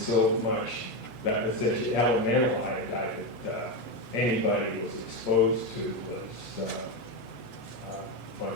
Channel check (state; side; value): late; right; 8.4 ms